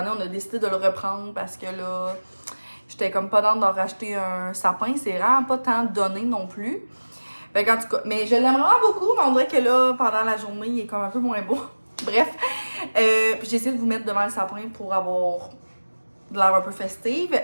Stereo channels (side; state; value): both; inverted; correlation -1.00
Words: on a décidé de le reprendre parce que là, j'étais comme pas dans d'en racheter un sapin. C'est vraiment pas tant donné non plus. Fait qu'en tout cas, mais je l'aime vraiment beaucoup, mais on dirait que là, pendant la journée, il est comme un peu moins beau. Bref, puis j'ai essayé de vous mettre devant le sapin pour avoir de l'air un peu festive.